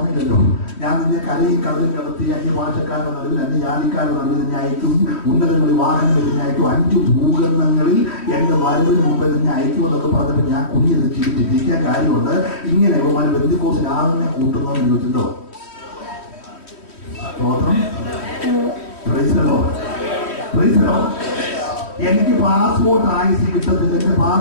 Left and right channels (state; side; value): late; right; 3.1 ms